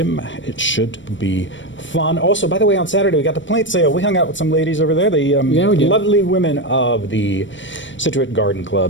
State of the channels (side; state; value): right; late; 0.55 ms